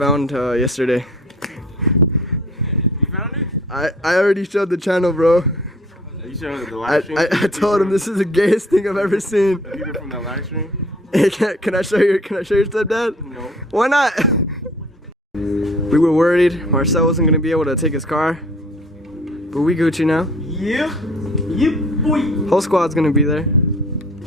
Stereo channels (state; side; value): normal; both; correlation 0.53